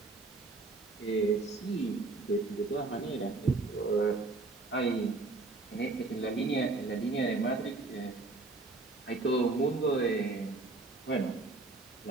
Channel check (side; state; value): left; quieter; 3.5 dB